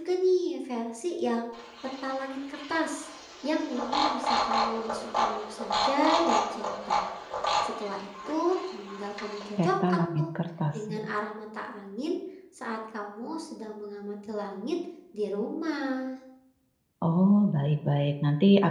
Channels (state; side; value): identical; both; correlation 1.00